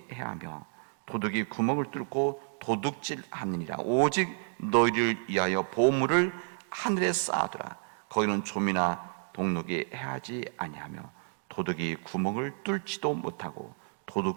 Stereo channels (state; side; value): silent; left; 57 dB below the other